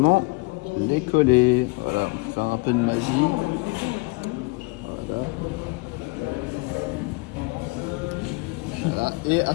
les coller. Voilà, faire un peu de magie. Voilà. Voilà. Et à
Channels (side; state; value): right; quieter; 27.5 dB